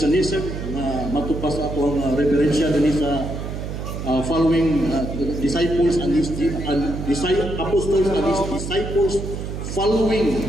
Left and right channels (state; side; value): noise; right; hum, 6 dB below the sound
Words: na matupas ako ang referensya din sa following disciples and apostles and his disciples following